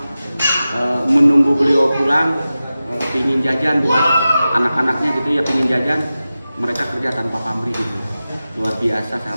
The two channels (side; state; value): both; inverted; correlation -0.94